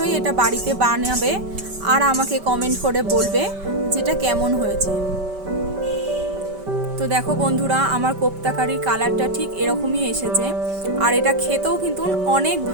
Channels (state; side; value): late; left; 5.2 ms